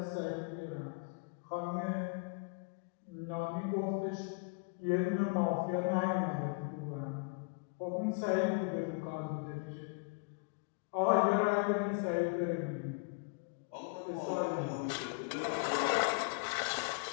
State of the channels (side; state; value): right; quieter; 32.1 dB